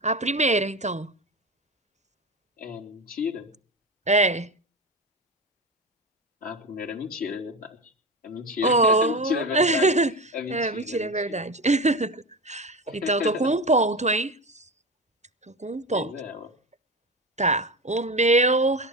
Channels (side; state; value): both; normal; correlation 0.24